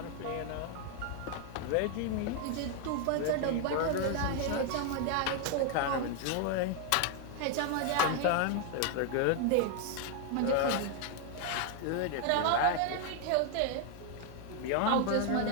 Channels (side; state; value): both; different; correlation 0.01